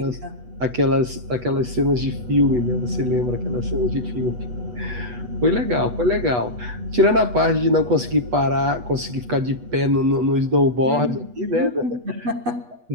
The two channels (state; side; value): late; left; 8.2 ms